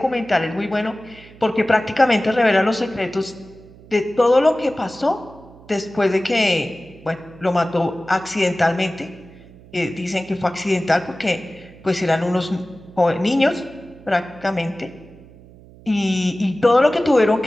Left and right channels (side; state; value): right; noise; hum, 22 dB below the sound